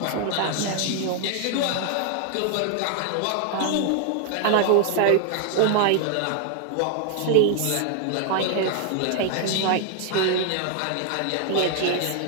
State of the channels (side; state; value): both; different; correlation 0.00